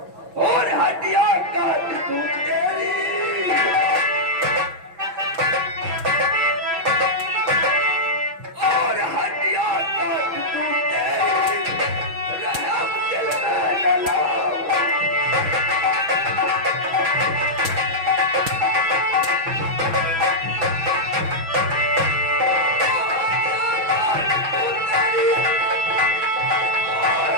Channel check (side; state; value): left; late; 6.0 ms